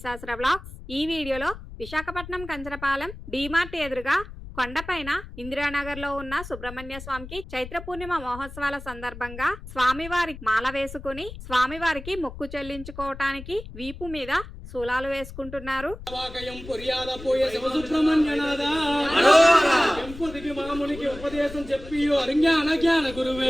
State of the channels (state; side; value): noise; left; rumble, 13 dB below the sound